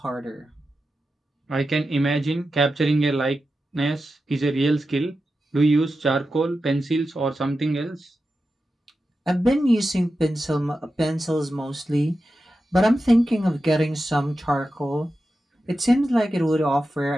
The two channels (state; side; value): normal; both; correlation 0.91